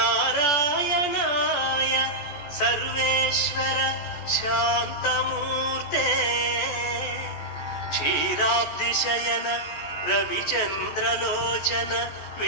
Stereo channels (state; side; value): late; right; 14 ms